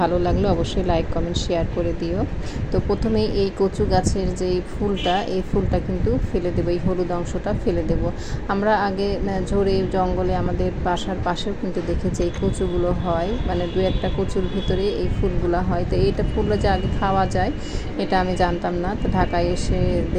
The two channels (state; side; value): identical; both; correlation 1.00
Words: লাগলে অবশ্যই লাইক কমেন্ট শেয়ার করে দিও। তো প্রথমেই এই কচু গাছের যে ফুলটা, এই ফুলটা কিন্তু ফেলে দেবো, এই হলুদ অংশটা ফেলে দেব। আমরা আগে ঝড়ে জঙ্গলে আমাদের বাসার পাশেও কিন্তু দেখেছি এই কচুগুলো হয়, মানে দু একটা কচুর ভিতরে এই ফুলগুলো হয়। তো এইটা ফুলটা যে আগে খাওয়া যায় এটা আমি জানতাম না। তো ঢাকায় এসে